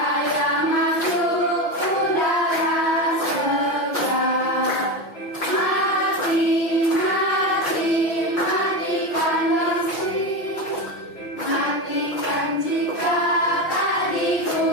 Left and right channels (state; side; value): late; right; 5.9 ms